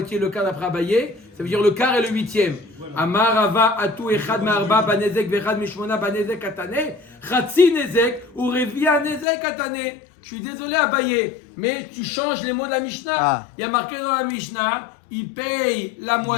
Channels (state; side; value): drops out; right; at 9.2 s